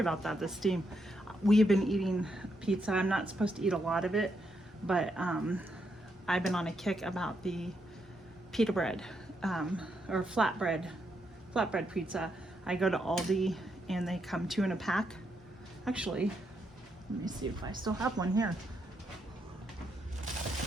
that, the steam. We've been eating pizza. I'm not supposed to eat a lot of it, but I've been on a kick about the pita bread, or flatbread pizza. I go to Aldi and they come 2 in a pack. Actually, let me see if I still have one here.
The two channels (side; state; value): both; normal; correlation 0.80